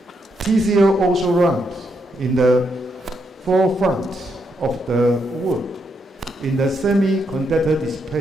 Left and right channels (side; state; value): both; normal; correlation 0.79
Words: TCL also ranked in the forefront of the world in the semiconductor